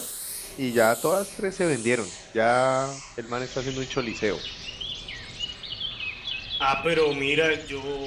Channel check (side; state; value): both; identical; correlation 1.00